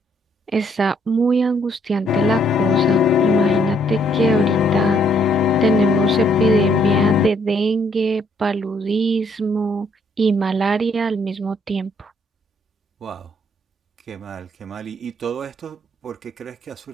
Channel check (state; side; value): normal; both; correlation 0.68